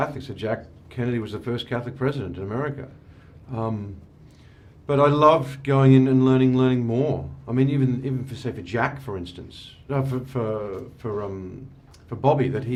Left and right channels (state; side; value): identical; both; correlation 1.00